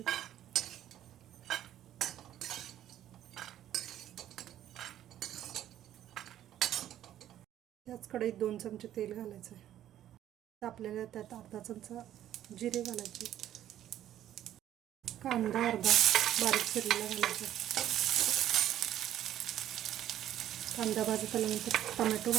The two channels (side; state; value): left; quieter; 11.8 dB